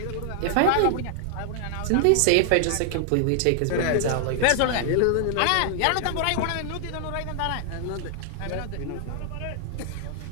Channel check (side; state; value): both; different; correlation 0.00